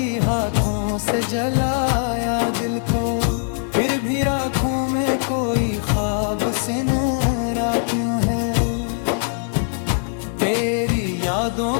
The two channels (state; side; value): silent; right; 65 dB below the other